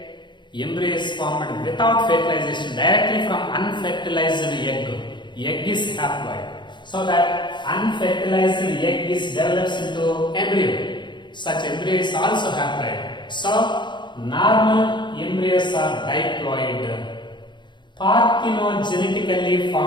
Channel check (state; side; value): late; right; 0.22 ms